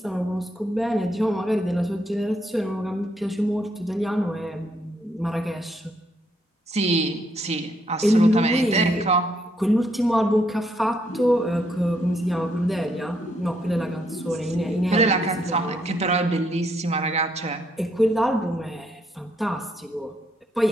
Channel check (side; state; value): both; normal; correlation 0.74